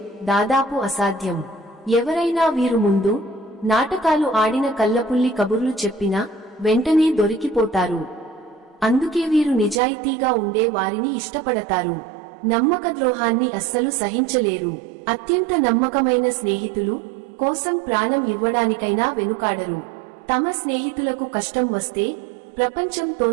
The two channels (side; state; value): left; drops out; at 9.8 s